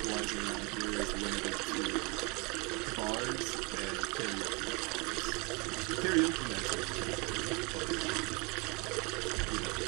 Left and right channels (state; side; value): quieter; left; 29.5 dB